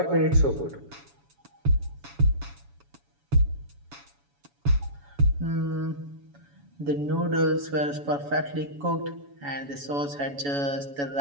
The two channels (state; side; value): late; left; 7.1 ms